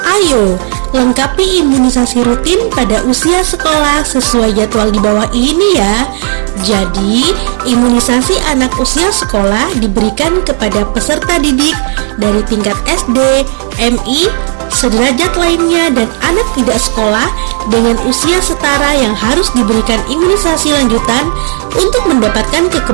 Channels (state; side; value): quieter; left; 39.8 dB